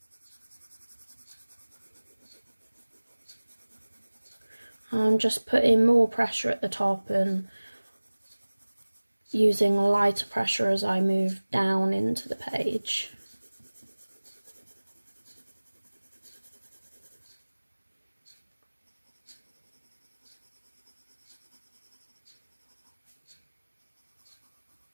I'm just putting more pressure at the top and using lighter pressure as I move down into the page.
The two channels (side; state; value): both; inverted; correlation -1.00